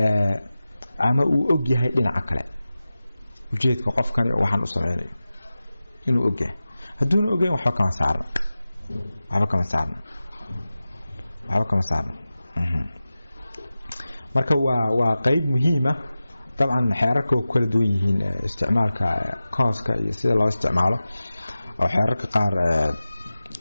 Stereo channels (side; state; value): both; inverted; correlation -0.95